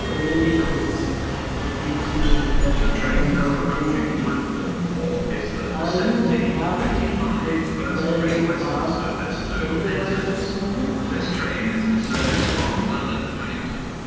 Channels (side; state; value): both; identical; correlation 1.00